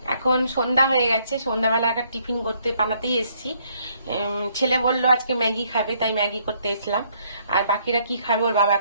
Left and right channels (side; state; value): both; inverted; correlation -0.68